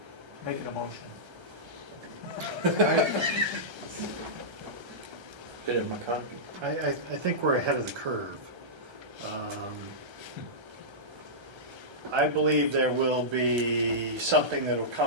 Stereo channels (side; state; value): left; late; 1.3 ms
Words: Make it a motion. Did it, my copy? I think we're ahead of the curve. I believe there will be something that will